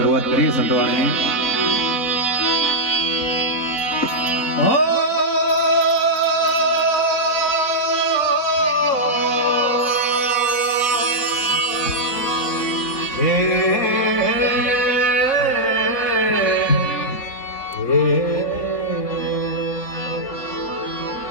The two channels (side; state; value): right; late; 4.0 ms